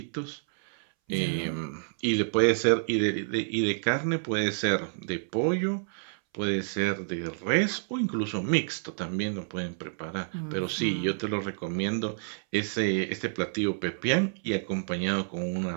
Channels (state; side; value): silent; left; 59 dB below the other